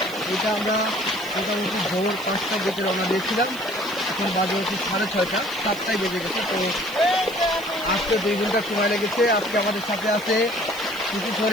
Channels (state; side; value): noise; right; hiss, 17 dB below the sound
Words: এটা আমরা মোটামুটি ভোর 5টার দিকে রওনা দিয়েছিলাম, এখন বাজে হচ্ছে 6:30, 7টায় বেজে গেছে। তো আজকে 2 ঘন্টা সময় লেগেছে। আজকে আমাদের সাথে আছে শিশু